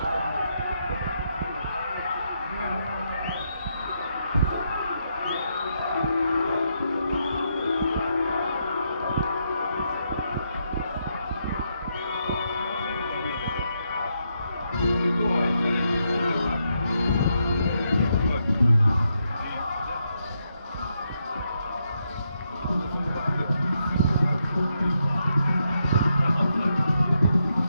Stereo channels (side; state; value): both; inverted; correlation -0.80